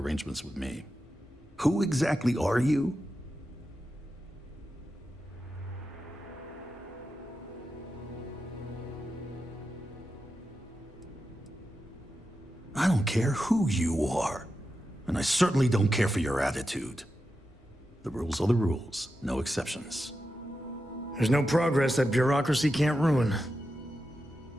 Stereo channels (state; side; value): normal; both; correlation 0.89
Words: with me. Who exactly are you? I don't care who you are, and I certainly don't care for your attitude. The rules are the rules, no exceptions. There's no progress that bureaucracy can't ruin.